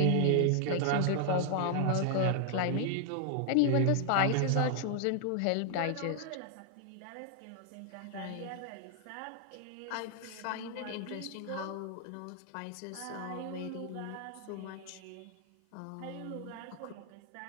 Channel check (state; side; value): different; both; correlation 0.00